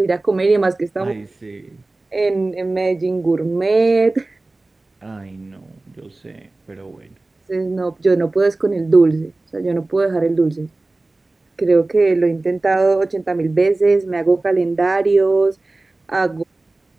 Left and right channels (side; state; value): left; quieter; 3.1 dB